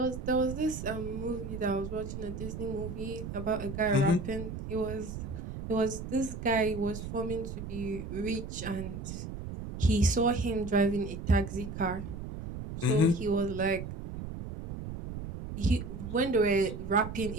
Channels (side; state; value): right; noise; rumble, 8 dB below the sound